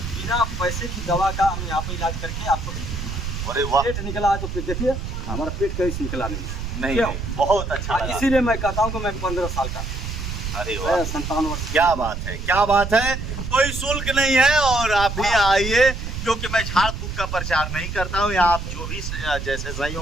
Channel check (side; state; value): right; noise; rumble, 5 dB below the sound